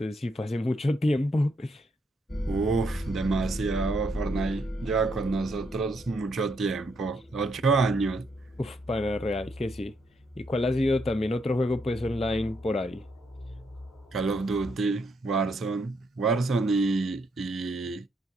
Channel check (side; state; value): both; normal; correlation 0.76